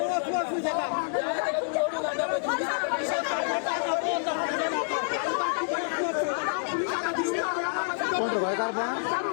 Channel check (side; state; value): right; silent; 59 dB below the other